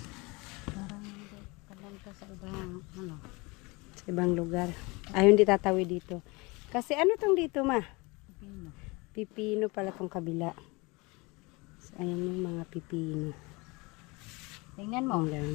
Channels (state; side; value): quieter; right; 25.8 dB